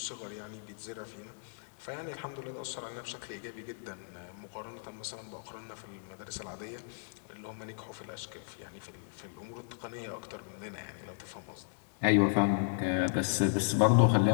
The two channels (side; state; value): right; silent; digital silence